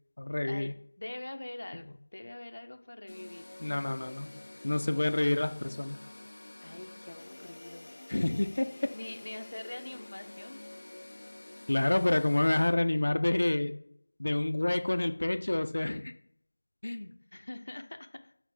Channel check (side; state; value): both; inverted; correlation -1.00